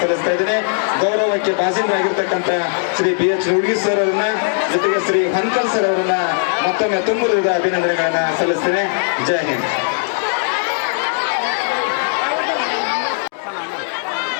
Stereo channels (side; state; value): right; silent; digital silence